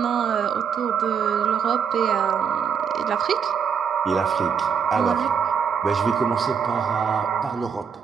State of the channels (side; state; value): left; quieter; 6.9 dB